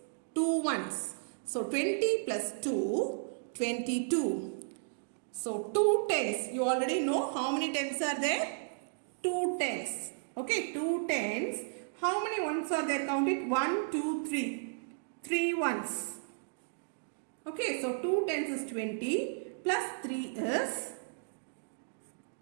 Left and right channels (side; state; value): left; silent; digital silence